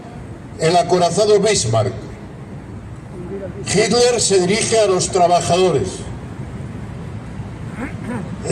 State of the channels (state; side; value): identical; both; correlation 1.00